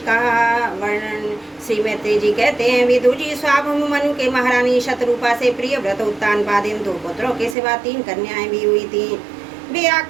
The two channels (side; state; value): left; drops out; at 7.6 s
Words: का वर्णन। श्री मैत्री जी कहते हैं, विदुर जी, स्वाभंभु मनु के महारानी शतरूपा से प्रिय व्रत उत्तानपादिन 2 पुत्रों के सिवा 3 कन्याएं भी हुई थी। वे